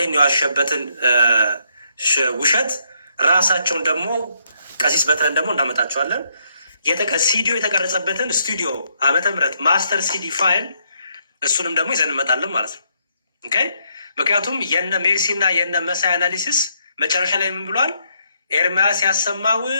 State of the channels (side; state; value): both; inverted; correlation -0.74